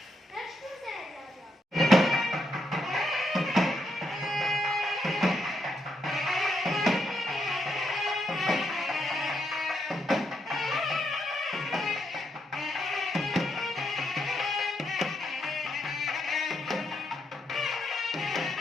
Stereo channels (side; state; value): both; normal; correlation 0.79